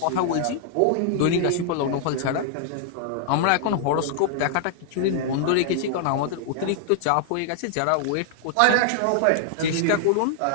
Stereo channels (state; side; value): different; both; correlation -0.01